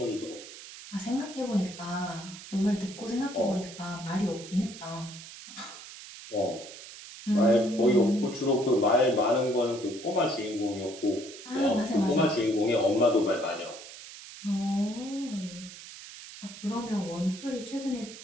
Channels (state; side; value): noise; right; hiss, 14 dB below the sound